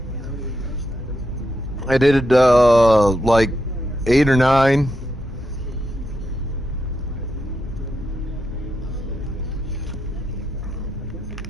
I did like 8 or 9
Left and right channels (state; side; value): normal; both; correlation 0.83